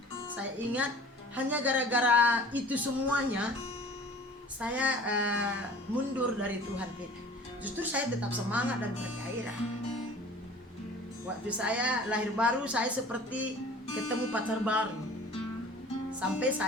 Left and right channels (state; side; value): normal; both; correlation 0.45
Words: saya ingat hanya gara-gara itu semuanya saya mundur dari Tuhan kita. Justru saya tetap semangat dan bergairah. Waktu saya lahir baru, saya seperti ketemu pacar baru. Sampai